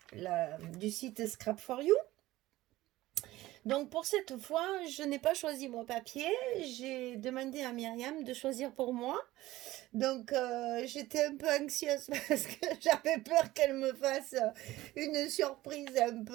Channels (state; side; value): quieter; left; 17.0 dB